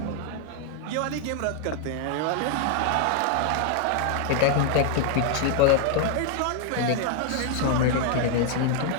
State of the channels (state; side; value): different; both; correlation 0.00